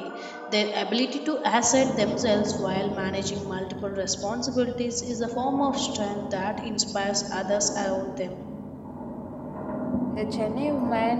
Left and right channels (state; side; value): identical; both; correlation 1.00